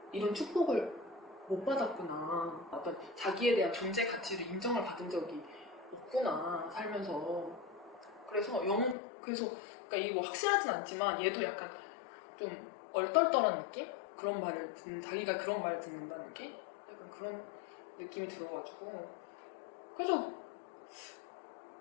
이런 축복을 못 받았구나. 어떤 자기에 대한 존재 가치를 인정을 받은 적이 없구나, 살면서. 그래서 그러니까 이게 뭐 확실하진 않지만 얘도 약간 좀 얼떨떨한 느낌? 자기가 그런 말을 듣는다는 느낌? 약간 그런 느낌이 들어가지고. 그래서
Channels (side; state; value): right; drops out; at 9.0 s